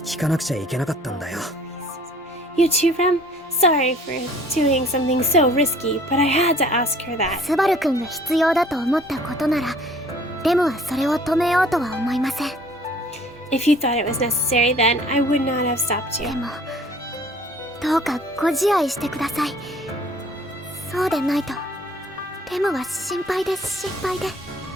聞かなくちゃいけなかったんだよ。You too, Rem? Sorry for doing something so risky, but I had to ask her that. スバル君が必要だと思ったことなら、レムはそれを止めようとは思いません。If you thought it was necessary, then I would not have stopped you. でも、どうかご自愛してください。そうでないと、レムは心配で心配で。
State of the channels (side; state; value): both; normal; correlation 0.53